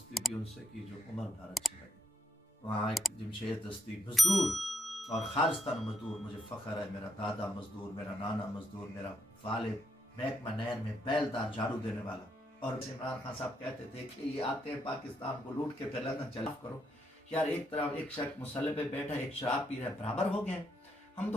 भी उनसे की जो उम्र भर अच्छी लगे। वहाँ एक जमशेद दस्ती मजदूर और खालिस्तान मजदूर, मुझे फ़ख्र है, मेरा दादा मजदूर, मेरा नाना मजदूर, मेरा वालिद महकमा नहर में बैलदार झाड़ू देने वाला। और इमरान खान साहब कहते थे कि ये आते हैं पाकिस्तान को लूट के फिर लंदन चला करो। यार एक तरफ एक शख्स मुसल्ले पे बैठा, एक शराब पी रहा है, बराबर हो गए। हम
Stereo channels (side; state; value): both; normal; correlation 0.77